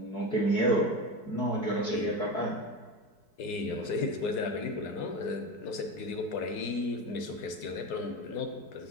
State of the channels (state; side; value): late; right; 4.6 ms